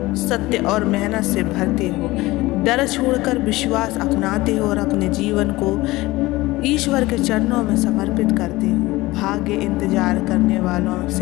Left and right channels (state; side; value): quieter; right; 19.5 dB